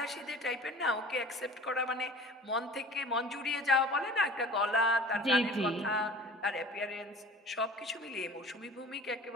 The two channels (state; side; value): normal; both; correlation 0.44